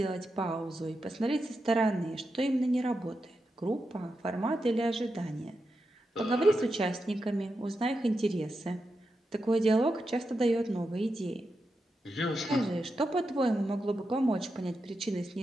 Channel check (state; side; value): normal; both; correlation 0.88